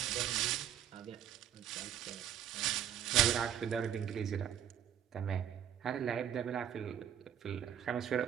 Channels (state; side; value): quieter; left; 9.8 dB